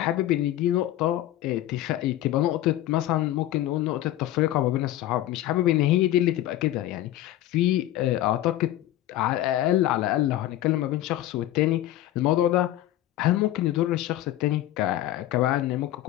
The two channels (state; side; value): quieter; right; 14.0 dB